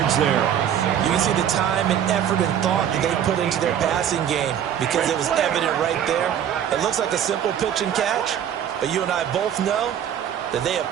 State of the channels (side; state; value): left; quieter; 9.6 dB